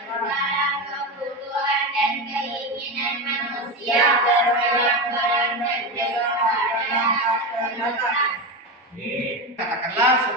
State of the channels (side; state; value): both; normal; correlation 0.17